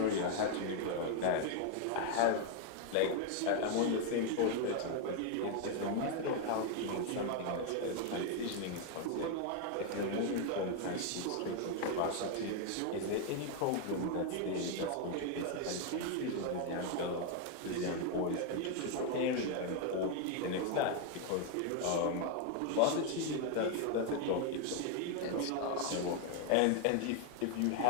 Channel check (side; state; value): both; different; correlation 0.01